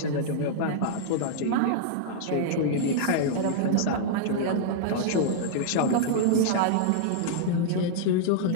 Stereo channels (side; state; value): both; different; correlation -0.01